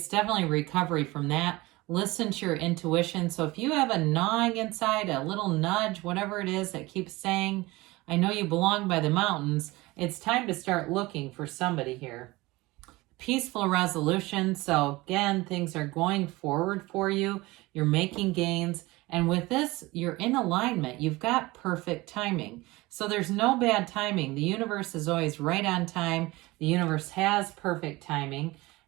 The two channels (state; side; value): quieter; left; 21.1 dB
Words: definitely recovery from that. Listen to your intuition. So if you have a gnawing inside, a little nudge, whatever it is that keeps saying, I know you belong by the mountains, it's time to start looking for somebody here. Peaceful resolution. So again, things are going forward for you. You're making gains. And with this, you're in alignment. You've got perfect timing. So there's no bad timing. The universe is always right on time. The universe has perfect timing.